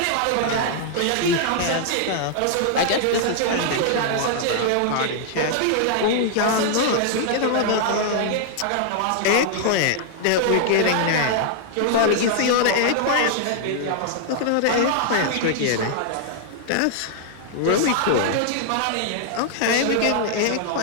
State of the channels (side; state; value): both; different; correlation -0.01